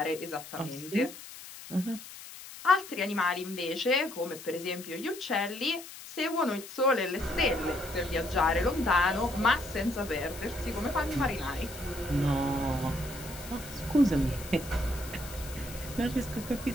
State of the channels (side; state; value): left; noise; hiss, 14 dB below the sound